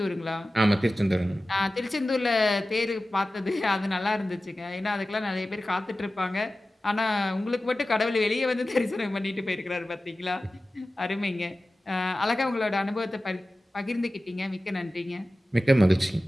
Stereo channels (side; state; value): both; normal; correlation 0.95